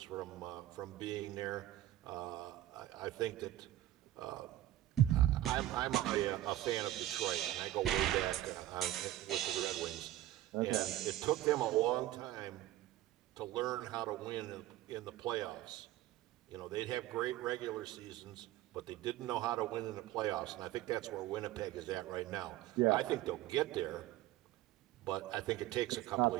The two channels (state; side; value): quieter; left; 14.5 dB